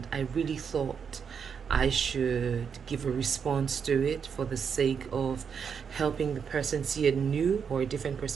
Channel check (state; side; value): quieter; left; 6.8 dB